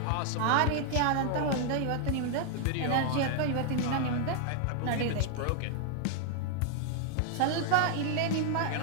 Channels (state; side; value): different; both; correlation 0.00